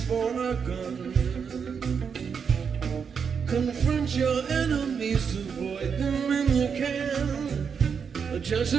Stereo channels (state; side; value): quieter; left; 6.5 dB